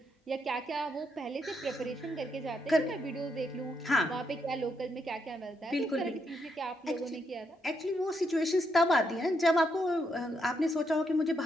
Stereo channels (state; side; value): normal; both; correlation 0.78